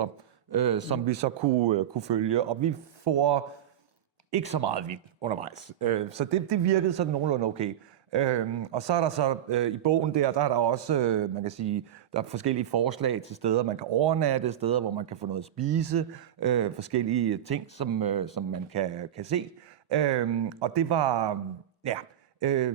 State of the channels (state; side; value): quieter; left; 10.9 dB